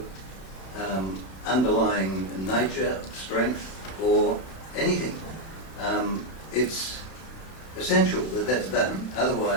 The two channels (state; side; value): late; right; 32 ms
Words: underlying nature, strength, or anything. It's essential that that's done.